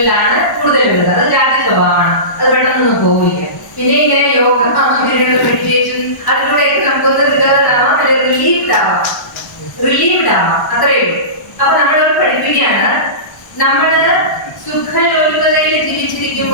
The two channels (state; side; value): late; right; 1.0 ms